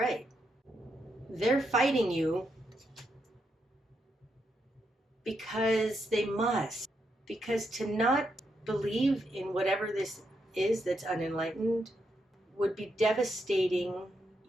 They're fighting you because they must. Because to not believe in whatever this is that's unenlightened would be devastating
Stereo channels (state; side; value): normal; both; correlation 0.81